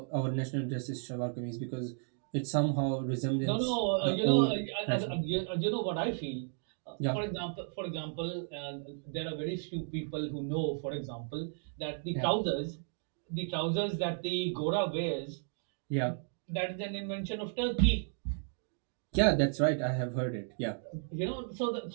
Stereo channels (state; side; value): silent; left; 55 dB below the other